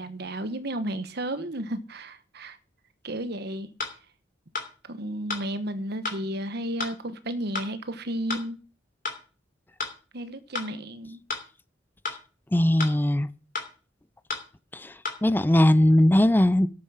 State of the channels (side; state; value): both; normal; correlation 0.85